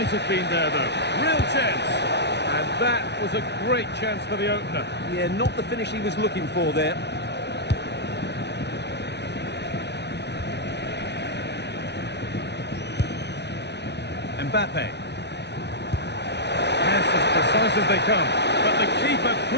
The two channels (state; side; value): late; right; 0.50 ms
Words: have been there, though. Real chance. And that was a great chance for the opener. Yeah, not the finish he was looking for there. Mbappe. Yes, as precise as they come. But the keeper